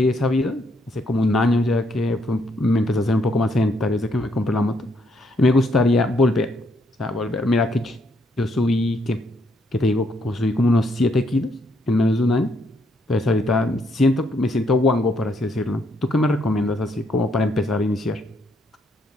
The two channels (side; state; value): both; normal; correlation 0.73